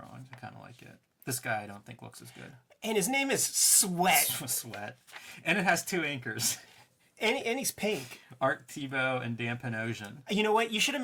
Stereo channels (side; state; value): both; identical; correlation 1.00